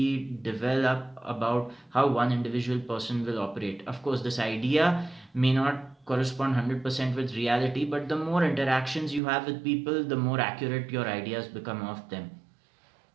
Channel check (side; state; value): left; drops out; at 9.2 s